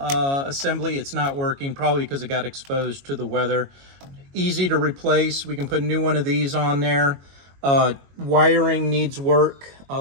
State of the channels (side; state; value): left; late; 22 ms